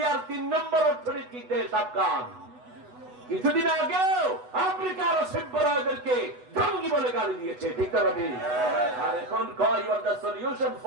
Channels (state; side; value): late; left; 8.1 ms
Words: 3 নম্বর অর্থনৈতিক দেশ আফগান। কিছুদিন আগেও আফ্রিকার অসভ্যদেরকে জঙ্গি বলে গালি দিয়েছে, ঠিক না ঠিক? আর এখন কয় you are the solution